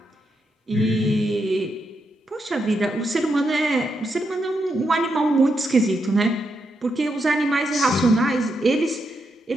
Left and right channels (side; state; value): both; normal; correlation 0.82